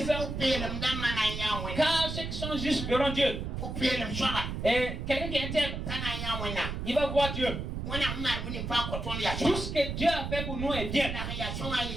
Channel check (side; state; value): right; noise; rumble, 4 dB below the sound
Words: Car ceux qui sont justes verront Dieu. Et quelqu'un qui est intègre, il va voir Dieu. Tout ce que Dieu a fait pour nous est bien.